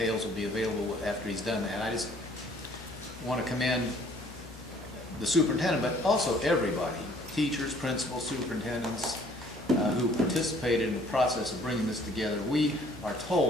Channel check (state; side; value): normal; both; correlation 0.58